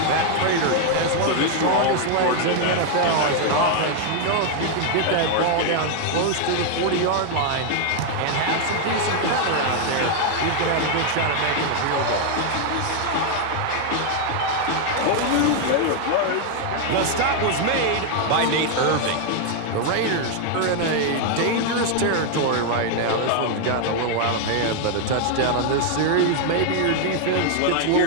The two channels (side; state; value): both; different; correlation 0.00